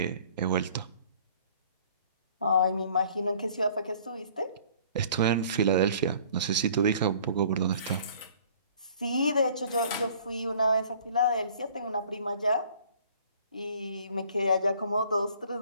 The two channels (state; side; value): inverted; both; correlation -0.54